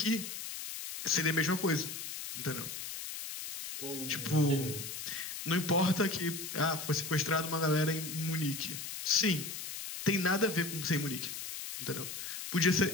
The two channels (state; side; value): noise; left; hiss, 7 dB below the sound